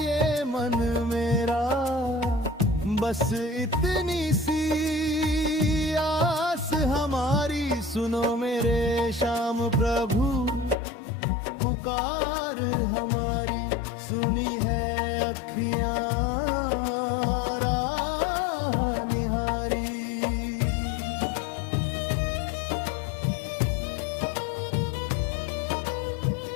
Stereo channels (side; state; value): right; drops out; at 10.8 s